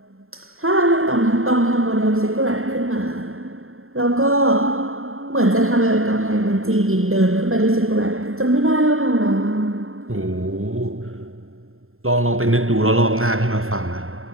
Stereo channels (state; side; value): late; left; 0.61 ms